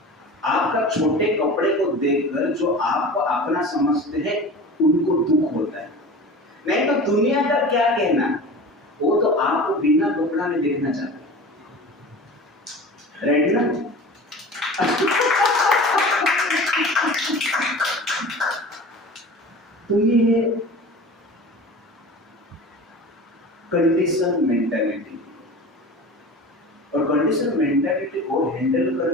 आपका छोटे कपड़े को देखकर जो आपको अपना समझते हैं उनको दुख होता है। नहीं तो दुनिया का क्या कहना, वो तो आपको बिना कपड़ा में देखना चाहता है, राइट ना? तो ये है कंडीशन मेंटालिटी। और कंडीशन मेंटालिटी को हैंडल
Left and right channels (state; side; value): normal; both; correlation 0.36